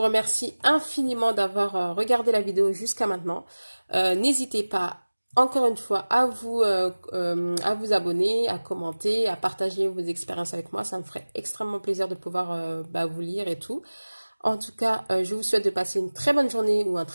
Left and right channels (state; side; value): inverted; both; correlation -1.00